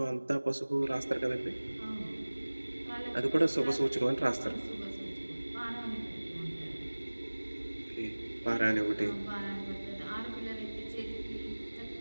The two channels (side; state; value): both; inverted; correlation -1.00